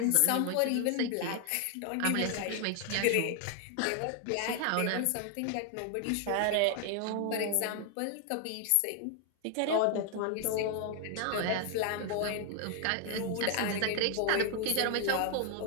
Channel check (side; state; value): both; different; correlation 0.00